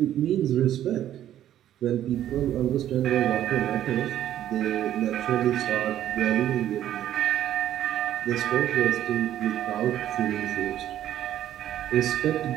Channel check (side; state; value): left; quieter; 11.7 dB